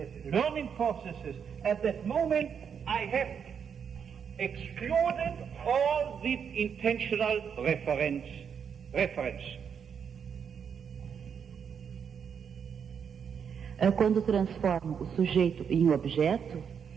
learning processes. At that moment I have excluded all the intentional reference. Quando transformo o sujeito em objeto,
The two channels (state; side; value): quieter; left; 7.2 dB